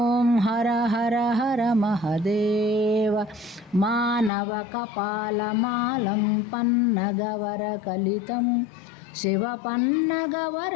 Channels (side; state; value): right; drops out; at 4.3 s